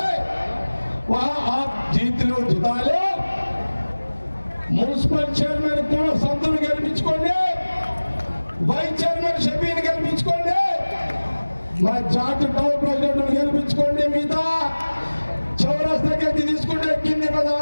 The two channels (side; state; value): both; inverted; correlation -1.00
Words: वहां आप जीत लो, जिता लो। మున్సిపల్ చైర్మన్ కూడా సంతులు గెలిపించుకోండి, వైస్ చైర్మన్ షఫీని గెలిపించుకోండి, మా జాట్ టౌన్ ప్రెసిడెంట్ గెలిపించుకోండి. మిగతా చౌరస్తాకి అది తీసుకుంటే కింది